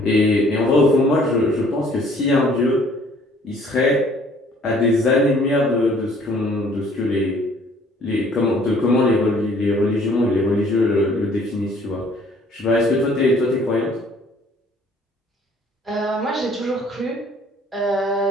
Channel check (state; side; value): normal; both; correlation 0.58